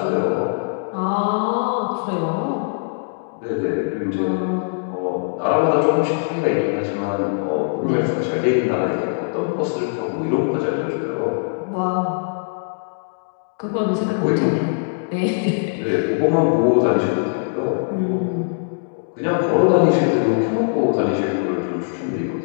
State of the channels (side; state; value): right; silent; digital silence